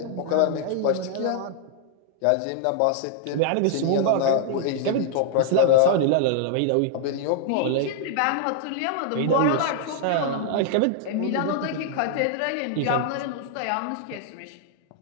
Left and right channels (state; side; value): different; both; correlation -0.01